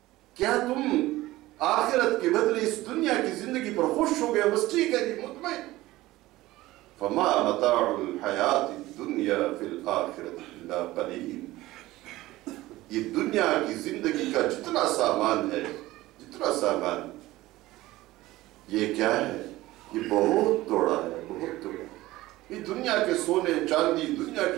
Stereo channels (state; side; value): quieter; left; 17.6 dB